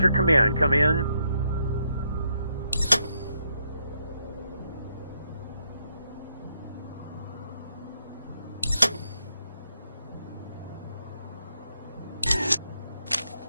Command. Come in.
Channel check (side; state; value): both; inverted; correlation -0.78